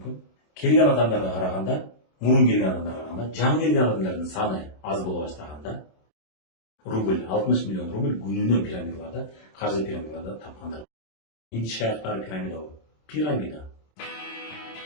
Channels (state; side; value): late; right; 27 ms